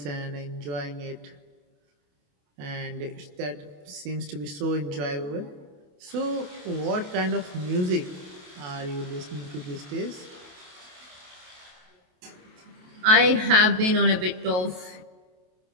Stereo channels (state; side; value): late; left; 28 ms